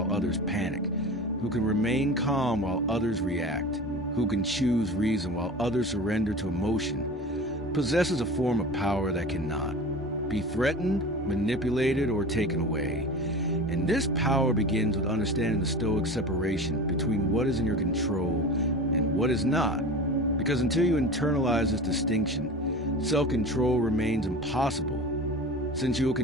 others panic, who can remain calm while others react, who can choose reason while others surrender to emotion, possesses a form of power that cannot be threatened, manipulated, or taken away. And this power begins with understanding the Stoic separation between what is in your control and what is not. Because until you internalize this distinction, self-control remains impossible, since you will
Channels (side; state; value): both; normal; correlation 0.34